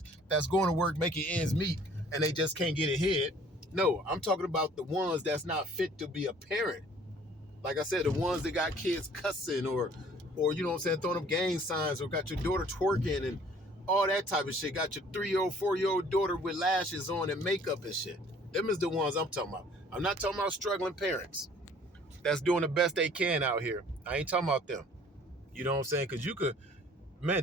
that's going to work making ends meet and they just can't get ahead. No, I'm talking about the ones that's not fit to be a parent. Like I said, the ones that got kids cussing or throwing up gang signs or got your daughter twerking and all that type of shit. Got your 3-year-old, 4-year-old daughter with lashes on and makeup and shit. Them is the ones I'm talking about. I'm not talking about struggling parents that's doing the best they can out here. I ain't talking about them. You know what I'm saying? Because you could,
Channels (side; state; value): both; normal; correlation 0.54